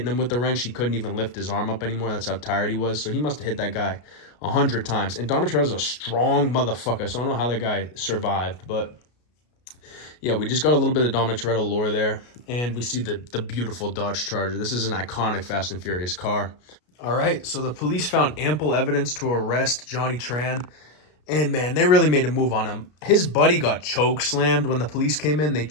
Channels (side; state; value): right; late; 33 ms